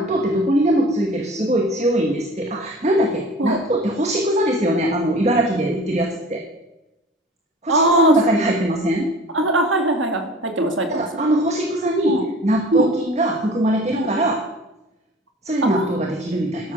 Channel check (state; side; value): normal; both; correlation 0.43